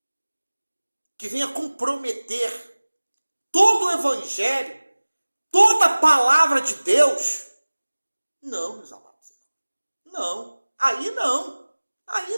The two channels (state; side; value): inverted; both; correlation -1.00